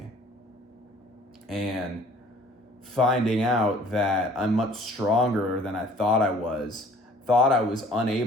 And finding out that I'm much stronger than I thought I was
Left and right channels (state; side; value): normal; both; correlation 0.53